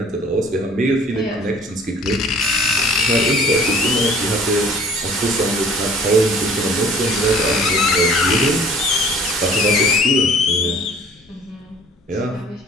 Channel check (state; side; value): normal; both; correlation 0.51